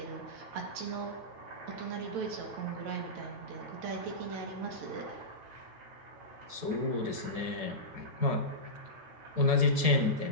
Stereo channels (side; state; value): left; late; 9.1 ms